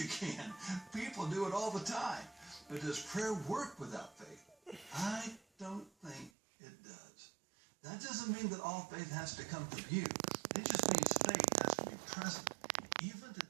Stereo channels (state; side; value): drops out; left; at 6.3 s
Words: can. People do it all the time. But does prayer work without faith? I don't think it does. That doesn't mean that all faith has to come from you. It just means faith has to be present. Even to